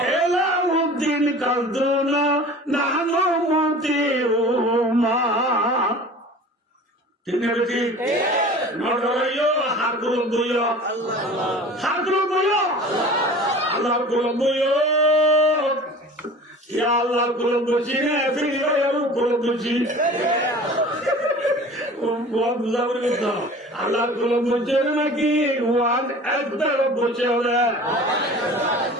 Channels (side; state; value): both; normal; correlation 0.41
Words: एला দিন কালদুন নানু মতিউমা ঠিক না ঠিক নড়াইও হাত গুলো হাত গুলো আল্লাহ গুলো ইয়া আল্লাহ গুলো বুঝি না ফিরিও গুলো বুঝি আল্লাহ গুলো বুঝে নাকি ওয়ান একবার বুঝে ওরা